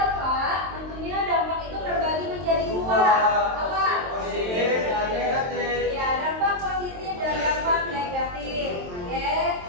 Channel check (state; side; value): late; left; 22 ms